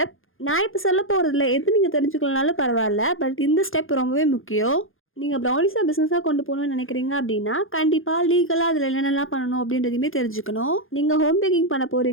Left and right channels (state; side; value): late; right; 0.59 ms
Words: நான் இப்போ சொல்ல போகிறதுல எது நீங்கள் தெரிஞ்சுக்கலனாலும் பரவாயில்ல, பட் இந்த ஸ்டெப் ரொம்பவே முக்கியம். நீங்கள் ப்ரௌனிஸாக பிஸ்னஸாக கொண்டு போகணும்னு நினைக்கிறீங்க அப்படின்னா கண்டிப்பாக லீகலாக அதில் என்னென்னலாம் பண்ணணும் அப்படின்றதையுமே தெரிஞ்சுக்கணும். நீங்கள் ஹோம் பேக்கிங் பண்ண